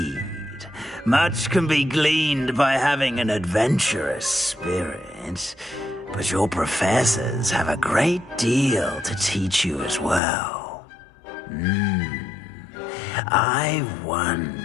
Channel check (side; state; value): right; drops out; at 10.2 s